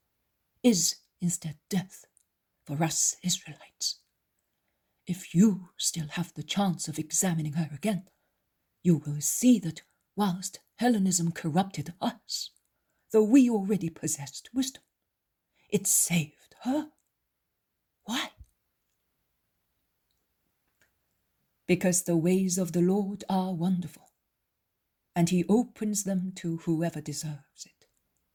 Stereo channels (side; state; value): both; identical; correlation 1.00